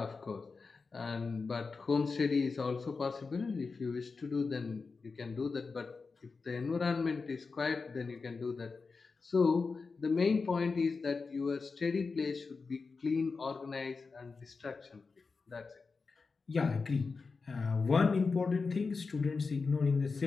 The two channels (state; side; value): quieter; right; 4.5 dB